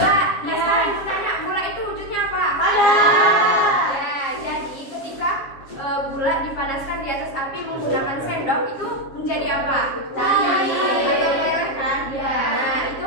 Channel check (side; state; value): right; late; 7.4 ms